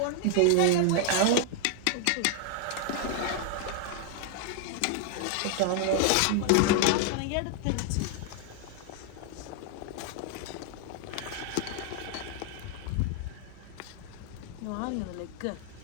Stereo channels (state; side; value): different; both; correlation 0.00